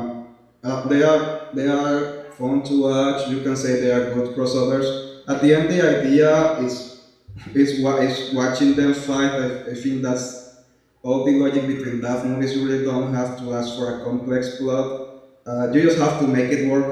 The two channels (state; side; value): identical; both; correlation 1.00